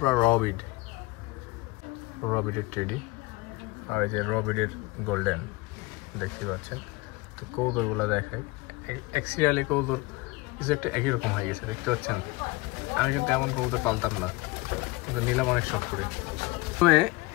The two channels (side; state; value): right; quieter; 22.2 dB